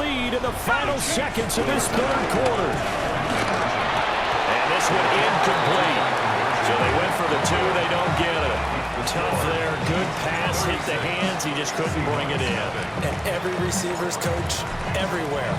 lead in the final seconds of this third quarter. And this one incomplete. So they went for the 2. They don't get it. Tough there. Good pass. Hit the hands. He just couldn't bring it in. And every receiver's coach everywhere.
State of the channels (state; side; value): identical; both; correlation 1.00